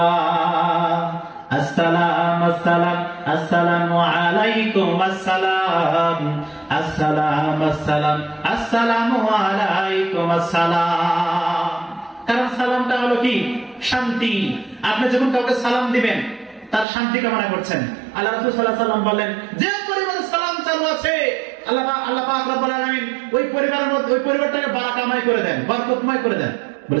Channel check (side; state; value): left; drops out; at 16.9 s